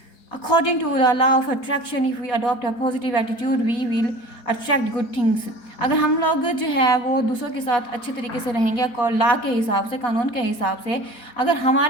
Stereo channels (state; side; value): late; right; 4.2 ms